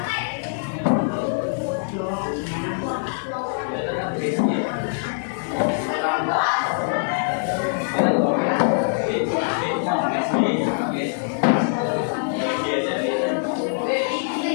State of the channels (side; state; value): right; silent; digital silence